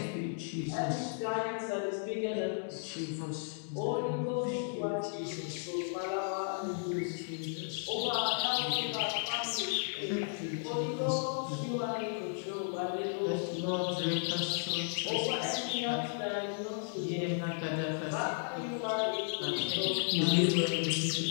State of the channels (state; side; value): silent; right; digital silence